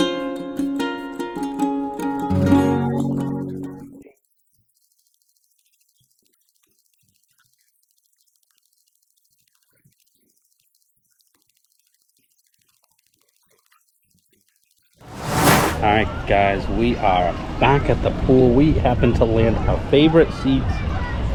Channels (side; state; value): both; identical; correlation 1.00